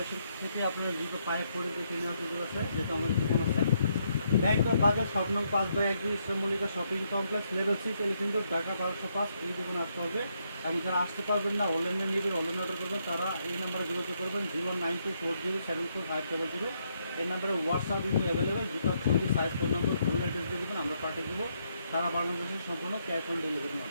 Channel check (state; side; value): inverted; both; correlation -0.76